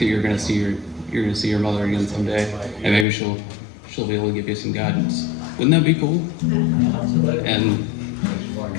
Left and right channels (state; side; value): drops out; right; at 3.1 s